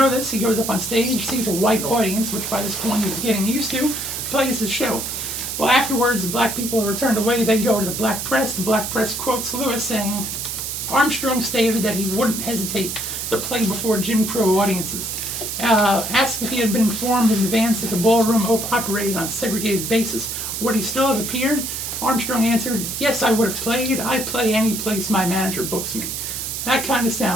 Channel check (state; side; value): noise; right; hiss, 4 dB below the sound